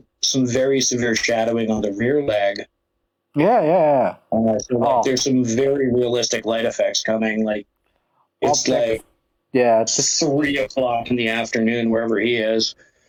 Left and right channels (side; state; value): both; identical; correlation 1.00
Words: some very severe shadowing on the rear leg. Yeah, yeah, yeah. So like Oh, there's some very realistic light effects coming. Like it's object. like Yeah, just 3 o'clock in the afternoon wherever he is.